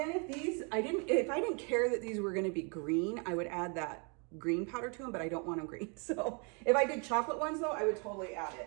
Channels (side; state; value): left; quieter; 35.8 dB